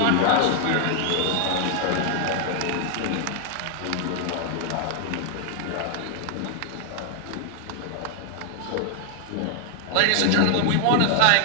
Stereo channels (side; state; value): both; different; correlation 0.00